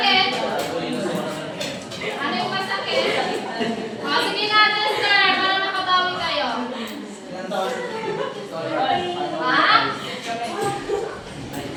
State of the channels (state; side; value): identical; both; correlation 1.00